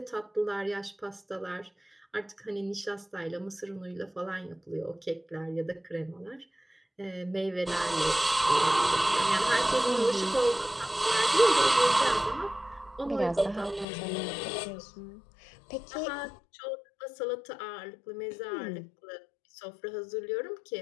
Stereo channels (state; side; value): drops out; right; at 13.9 s